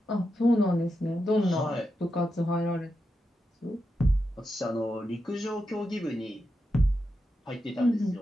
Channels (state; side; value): normal; both; correlation 0.87